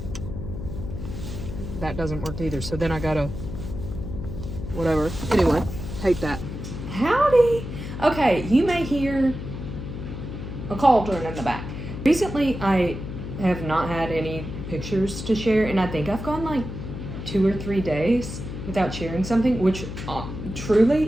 that doesn't work either. So then I gotta, whatever. Anyway, hate that. Howdy. Okay, you may hear a cauldron in the back. Recently, I have not had any pictures to share, and I think I've gone like 2 or 3 days without sharing something, which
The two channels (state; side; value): noise; left; hum, 8 dB below the sound